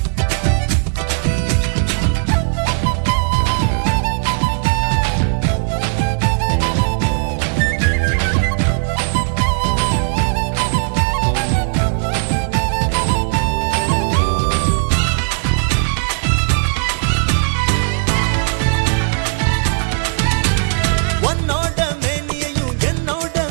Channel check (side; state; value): left; silent; 68 dB below the other